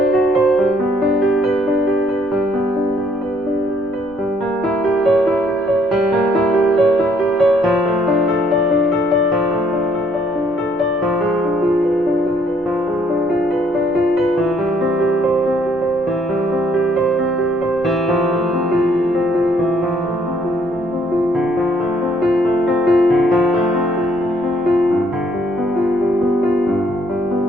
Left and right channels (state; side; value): noise; left; rumble, 25 dB below the sound